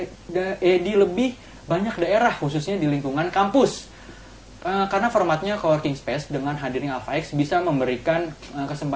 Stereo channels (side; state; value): both; identical; correlation 1.00